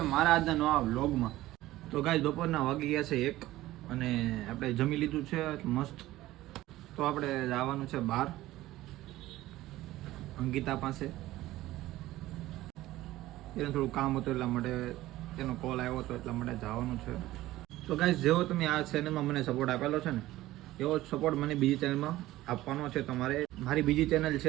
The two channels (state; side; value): quieter; left; 16.3 dB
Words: મારા આજના નવા વ્લોગમાં. તો ગાઈસ બપોરના વાગી ગયા છે 1 અને આપણે જમી લીધું છે મસ્ત. તો આપણે જવાનું છે બહાર અંકિતા પાસે. એને થોડું કામ હતું એટલા માટે તેનો કોલ આવ્યો હતો એટલા માટે જવાનું છે. તો ગાઈસ જેવો તમે આ ચેનલમાં મને સપોર્ટ આપેલો છે ને એવો સપોર્ટ મને બીજી ચેનલમાં આપવાનો છે તમારે. મારી બીજી ચેનલ